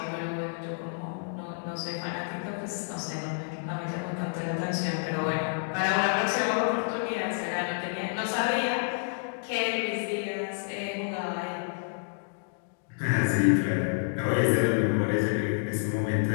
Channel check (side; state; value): right; silent; digital silence